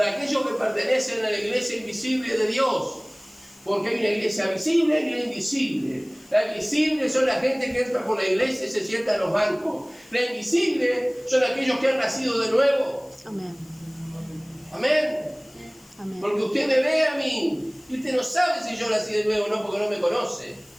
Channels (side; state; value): left; noise; hiss, 27 dB below the sound